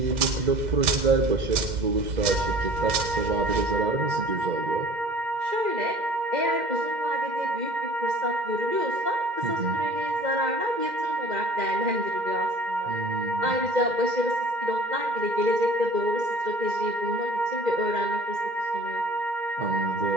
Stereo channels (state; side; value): late; left; 2.1 ms